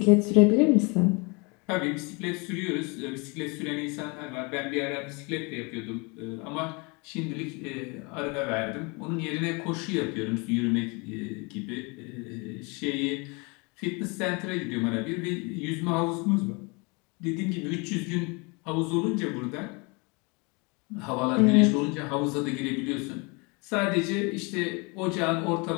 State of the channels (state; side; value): quieter; right; 29.8 dB